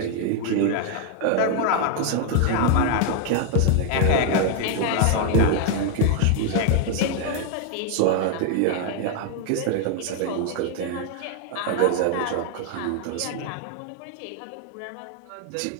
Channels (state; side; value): different; both; correlation 0.00